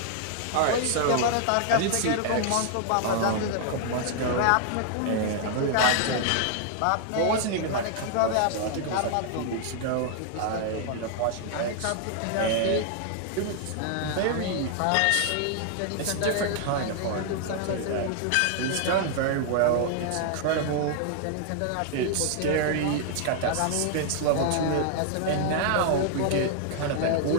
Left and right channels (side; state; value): both; different; correlation 0.00